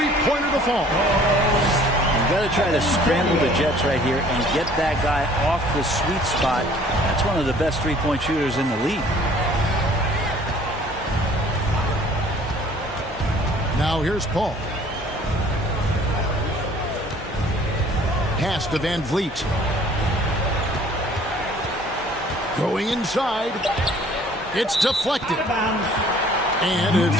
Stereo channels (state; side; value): normal; both; correlation 0.54